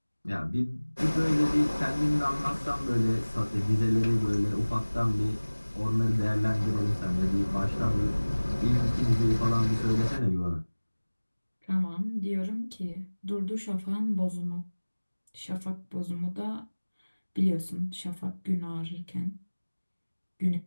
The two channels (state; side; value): inverted; both; correlation -1.00